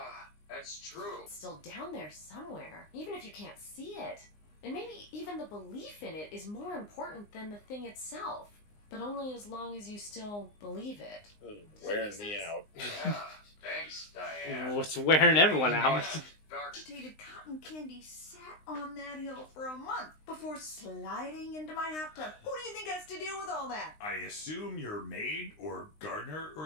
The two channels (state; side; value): late; right; 19 ms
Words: that's true. It's still down there somewhere, even if you can't see it. And maybe even the belief in it is more important than the thing itself. But only as long as you still believe it. Wearing me out. Yeah, thanks, Diane. What's wearing everyone out? Agitated cotton candy sat on that hill for a month before sliding into my hot tub. Who do you think has to deal with all that? I assume you're maid or gardener